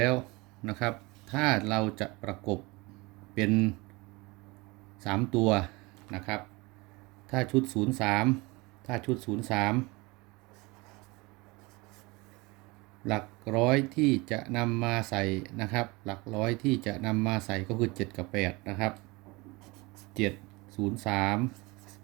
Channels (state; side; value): quieter; left; 24.5 dB